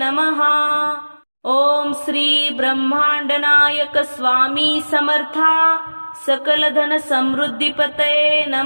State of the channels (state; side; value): inverted; both; correlation -1.00